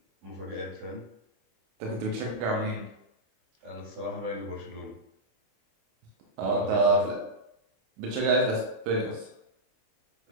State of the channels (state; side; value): late; left; 25 ms